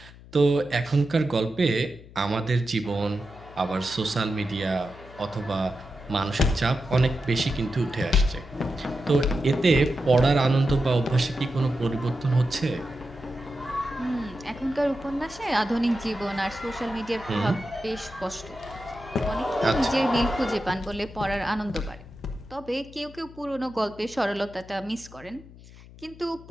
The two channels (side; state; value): left; noise; hum, 20 dB below the sound